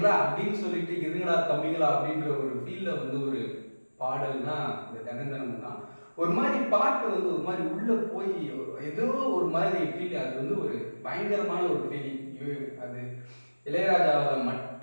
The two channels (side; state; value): both; inverted; correlation -1.00